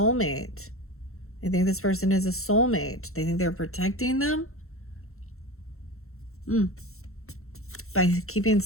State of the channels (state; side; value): late; right; 0.63 ms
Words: They think this person is a soulmate. They think they're protecting them. By keeping